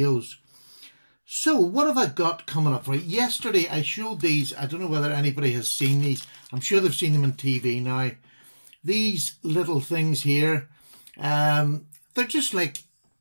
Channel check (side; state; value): both; inverted; correlation -1.00